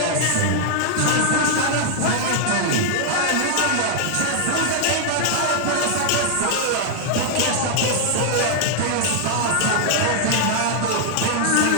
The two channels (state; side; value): different; both; correlation 0.00